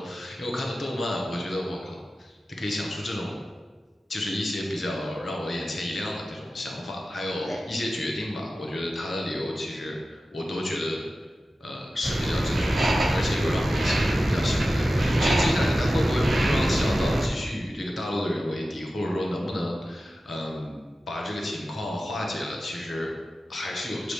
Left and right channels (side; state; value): both; normal; correlation 0.94